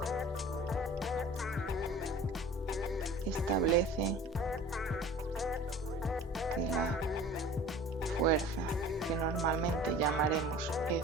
establece que la fuerza, que normalmente llamaremos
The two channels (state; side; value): normal; both; correlation 0.43